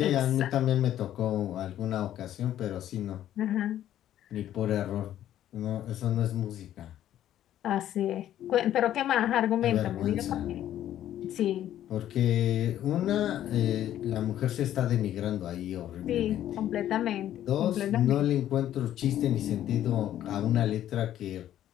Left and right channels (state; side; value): quieter; right; 11.9 dB